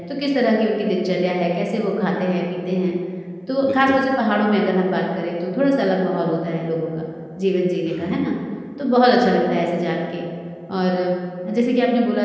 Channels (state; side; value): identical; both; correlation 1.00